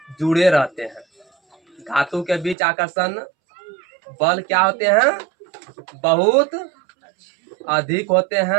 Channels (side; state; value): left; drops out; at 2.6 s